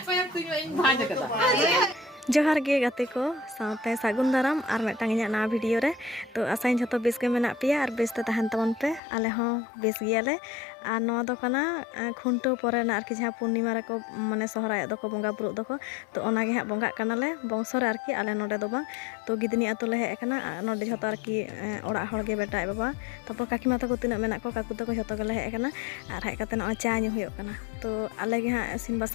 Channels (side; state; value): right; drops out; at 9.0 s